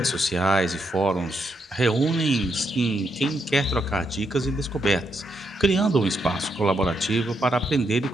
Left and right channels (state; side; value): normal; both; correlation 0.79